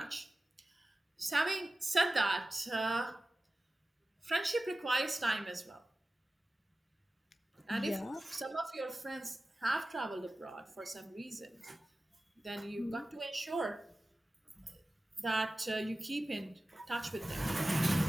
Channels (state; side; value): normal; both; correlation 0.95